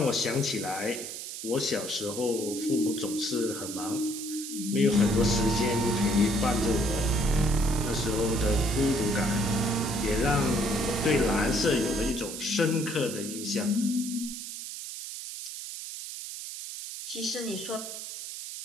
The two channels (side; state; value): right; noise; hiss, 8 dB below the sound